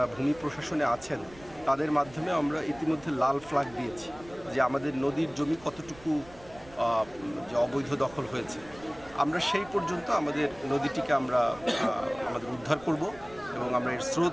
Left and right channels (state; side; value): noise; right; rumble, 22 dB below the sound